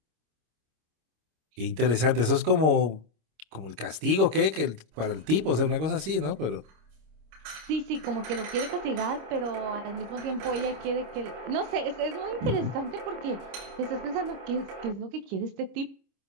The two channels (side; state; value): left; late; 26 ms